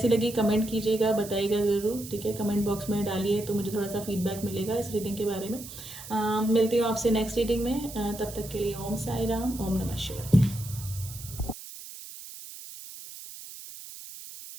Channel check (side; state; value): right; noise; hiss, 13 dB below the sound